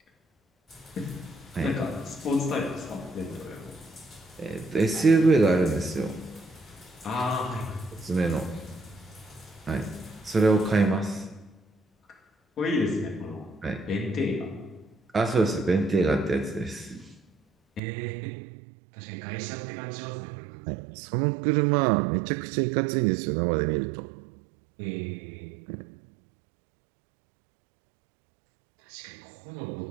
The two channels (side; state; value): left; drops out; at 17.8 s